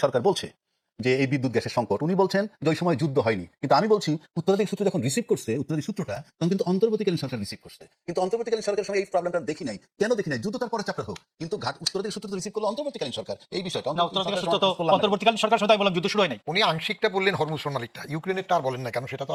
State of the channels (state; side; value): identical; both; correlation 1.00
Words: সরকার বলছে যে এই বিদ্যুৎ গ্যাসের সংকট। উনি বলছেন যে ওই সময় যুদ্ধ হয়নি, কিন্তু আমি বলছি উত্তরাধিকার সূত্র যখন রিসিভ করছে, উত্তরাধিকার সূত্রটা তখন কিন্তু অন্তর্বর্তীকালীন সরকার রিসিভ করছে, কিন্তু অন্তর্বর্তীকালীন সরকারের সঙ্গে এই প্রবলেমটা দেখি নাই। কেন দেখি নাই? যুদ্ধ তার পরে চ্যাপ্টার হোক, কিন্তু উত্তরাধিকার সূত্র রিসিভ করলো অন্তর্বর্তীকালীন সরকার। এই বিষয়টা অন্তর্বর্তীকালীন সরকার সদাই বললাম যুদ্ধ শুরু হয় নাই। উনি আংশিকটা বললেন, হরমুজ প্রণালীটা, ইউক্রেনেরটা আর বলেন না কেন, সেটা তো